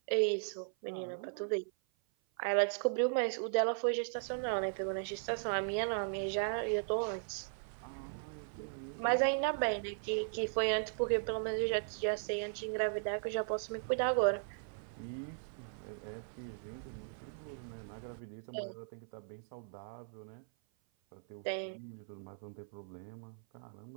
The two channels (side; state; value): left; silent; 53 dB below the other